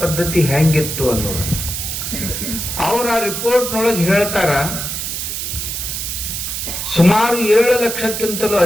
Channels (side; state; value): right; noise; hiss, 4 dB below the sound